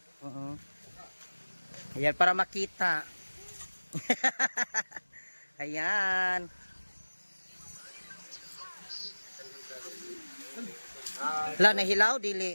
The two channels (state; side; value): inverted; both; correlation -1.00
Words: Ayan, para makita. Ayan. Hala, nahilaw, dili.